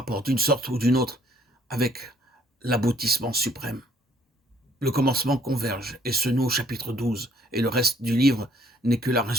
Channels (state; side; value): normal; both; correlation 0.63